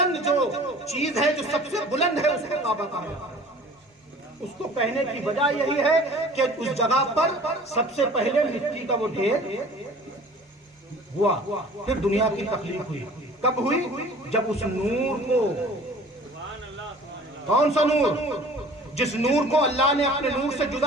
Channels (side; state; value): both; normal; correlation 0.47